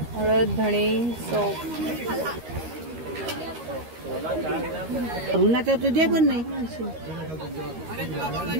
हळद धणे सॉप. उन्हाचं तुझे पण नाही.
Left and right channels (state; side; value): late; left; 13 ms